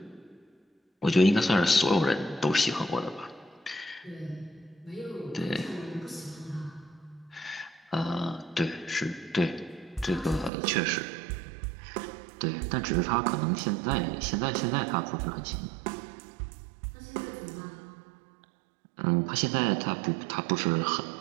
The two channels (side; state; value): left; drops out; at 10.5 s